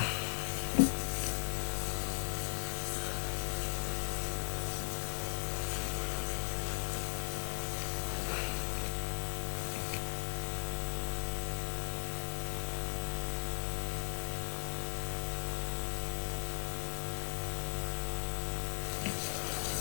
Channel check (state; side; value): silent; right; 53 dB below the other